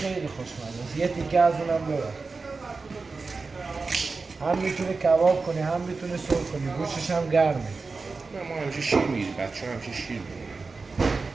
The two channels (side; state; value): left; quieter; 4.2 dB